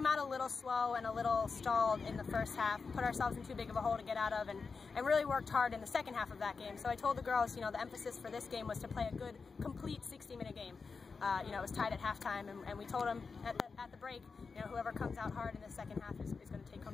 out a little slow and a little stalled in the first half, put ourselves in too big of a hole to get out of, and really worked hard in the second half of that game. So I told the girls, you know, the emphasis for this game was to play a good, complete 60-minute game. You know, it was tied at halftime, and we told them at the break, you know, whoever comes out hard in the second half is going to take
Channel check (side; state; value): right; quieter; 4.8 dB